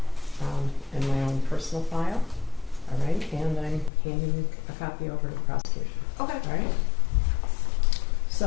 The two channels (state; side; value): drops out; right; at 3.9 s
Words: in my own personal file, all right? And I'm handing a copy over to the prosecution, Okay. all right?